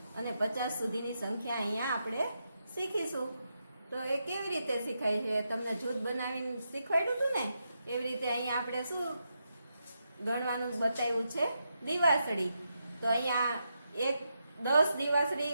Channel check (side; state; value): both; inverted; correlation -0.84